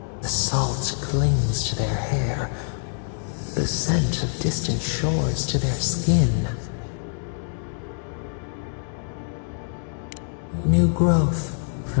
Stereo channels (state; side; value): silent; right; digital silence